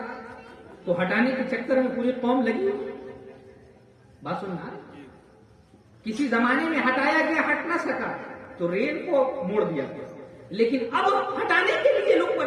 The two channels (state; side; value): identical; both; correlation 1.00